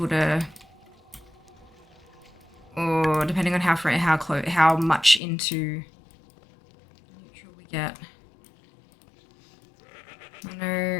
to, or depending on how much into neutral we get. I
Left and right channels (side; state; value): right; drops out; at 5.2 s